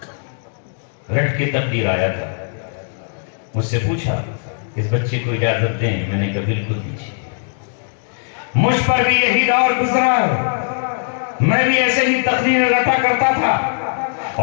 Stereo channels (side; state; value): right; silent; digital silence